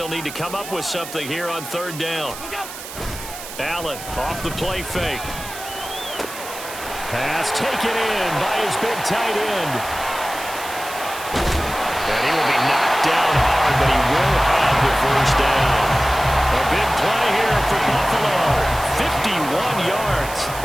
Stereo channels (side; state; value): right; noise; hiss, 12 dB below the sound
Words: need to come up with something here on 3rd down. Allen off the play fake. Pass taken in by his big tight end. And he will be knocked down hard, but he will have the 1st down. A big play here for Buffalo. 51 yards.